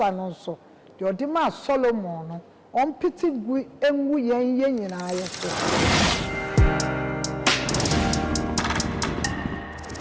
no so de odi ma Solomon no on piti gu enwu yen nyina aye so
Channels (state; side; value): identical; both; correlation 1.00